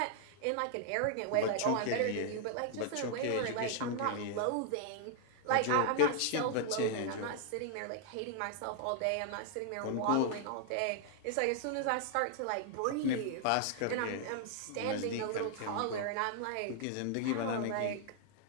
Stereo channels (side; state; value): both; different; correlation 0.00